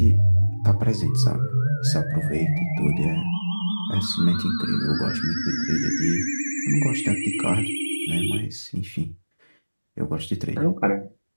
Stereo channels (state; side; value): inverted; both; correlation -1.00